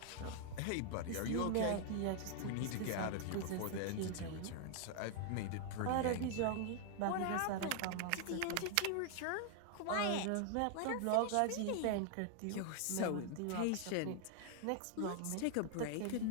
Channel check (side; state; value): both; different; correlation 0.00